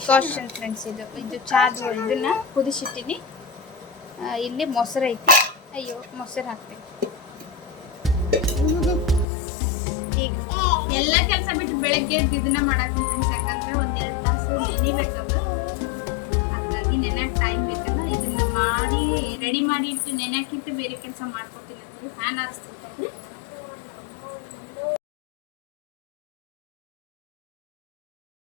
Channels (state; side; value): drops out; right; at 9.2 s